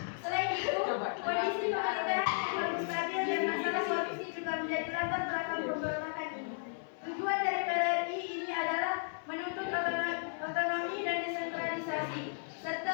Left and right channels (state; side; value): silent; right; 55 dB below the other